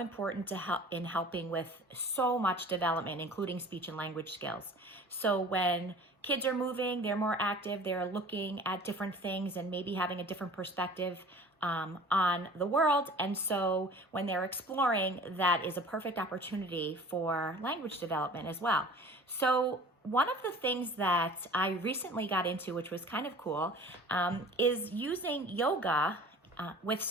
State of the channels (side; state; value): both; normal; correlation 0.44